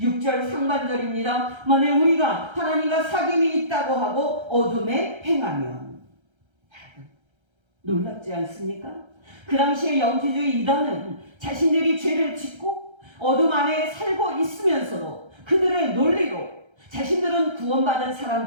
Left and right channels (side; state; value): left; late; 1.3 ms